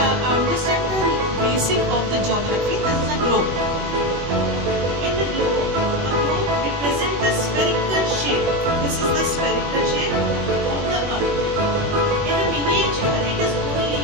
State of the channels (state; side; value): late; left; 21 ms